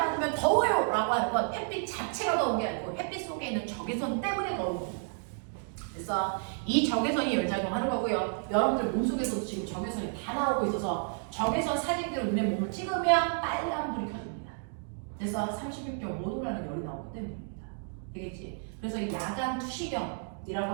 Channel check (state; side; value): silent; left; 57 dB below the other